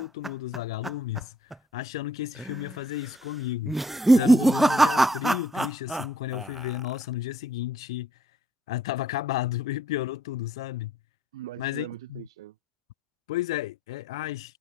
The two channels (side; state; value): both; normal; correlation 0.66